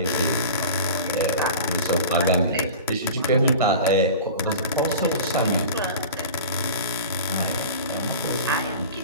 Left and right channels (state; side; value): inverted; both; correlation -0.36